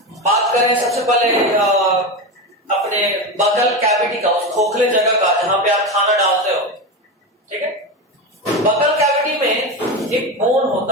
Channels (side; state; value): both; normal; correlation 0.19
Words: बात करें सबसे पहले अपने बगल कैविटी का, उस खोखले जगह का जहां पे आप खाना डालते हो, ठीक है। बगल कैविटी में एक बोन